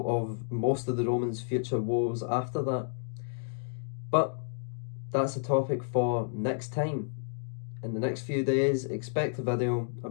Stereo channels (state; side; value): silent; right; digital silence